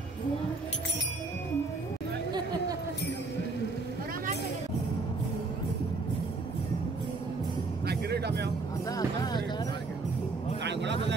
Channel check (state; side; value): quieter; left; 3.7 dB